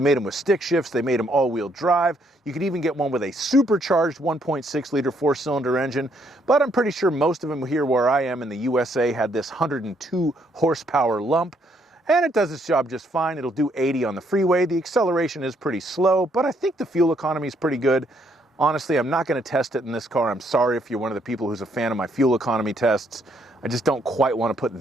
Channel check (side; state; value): both; normal; correlation 0.71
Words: them with stick shifts, they made them all-wheel drive. You could even get one with a supercharged 1.6 liter four-cylinder engine, but I'm pretty sure most of them here where I am in the USA had this 102 horsepower lump, and it does its job just fine. It'll do 80 on the freeway. The acceleration is pretty slow, but I think the fuel economy is pretty good. Honestly, I'm not going to test it in this car. I'm sorry if you're one of the people who's a fan of my fuel economy tests. I just don't quite want to put